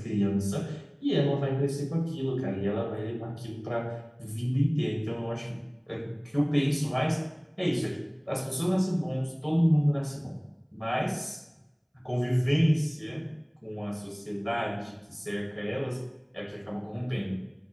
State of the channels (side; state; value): both; identical; correlation 1.00